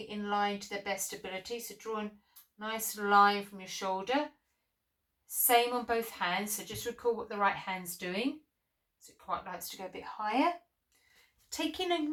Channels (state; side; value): identical; both; correlation 1.00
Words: in line to their best ability. So draw a nice line from your shoulder. Same on both hands. So just recall what the right hand's doing. So it quite likes to go a bit higher. Taking a